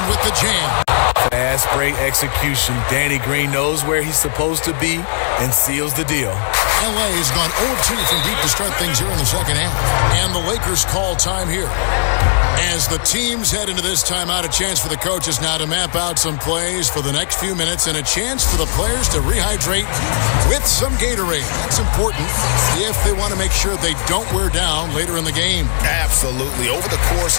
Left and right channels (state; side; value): silent; right; digital silence